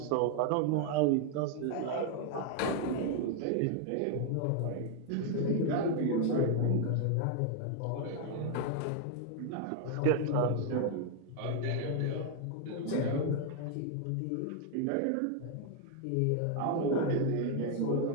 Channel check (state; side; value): different; both; correlation 0.00